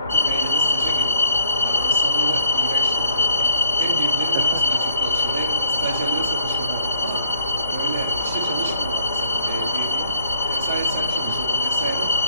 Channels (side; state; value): both; inverted; correlation -0.57